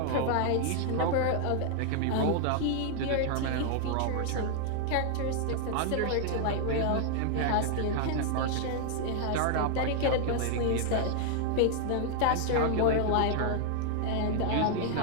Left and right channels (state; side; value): different; both; correlation 0.00